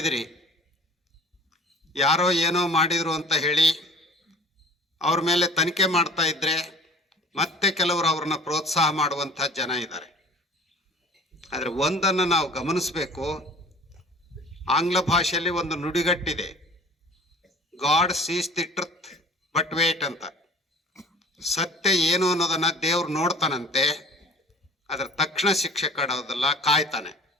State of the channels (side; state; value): both; normal; correlation 0.47